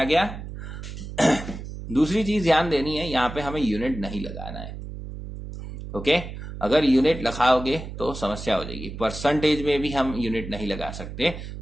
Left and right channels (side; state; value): right; noise; hum, 10 dB below the sound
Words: गया। दूसरी चीज ध्यान देनी है, यहाँ पे हमें यूनिट नहीं लगाना है, ओके। अगर यूनिट लगाओगे तो समस्या हो जाएगी, परसेंटेज में भी हम यूनिट नहीं लगा सकते,